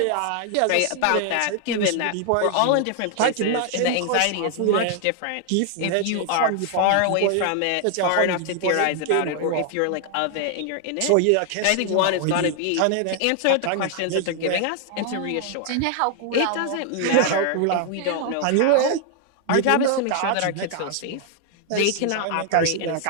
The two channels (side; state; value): both; different; correlation 0.00